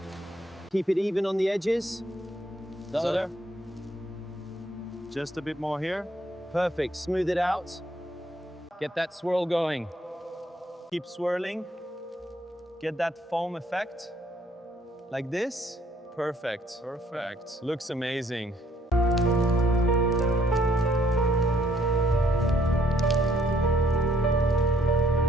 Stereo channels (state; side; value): normal; both; correlation 0.65